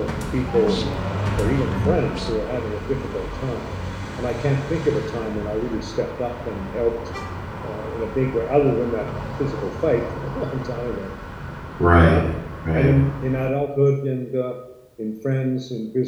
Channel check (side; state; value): both; identical; correlation 1.00